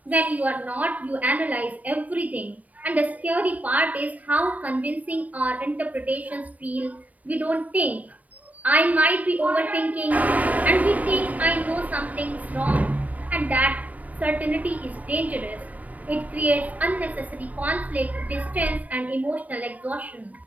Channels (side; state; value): left; late; 0.072 ms